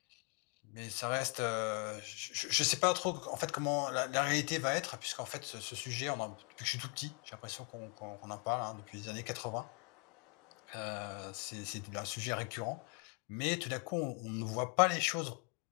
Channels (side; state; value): right; quieter; 34.4 dB